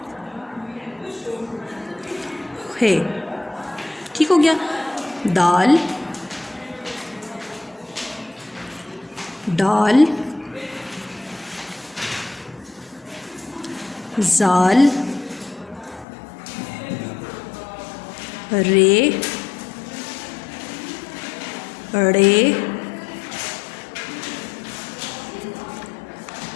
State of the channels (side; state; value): right; drops out; at 16.1 s